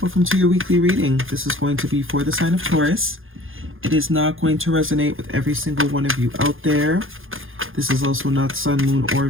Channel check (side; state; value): left; late; 0.59 ms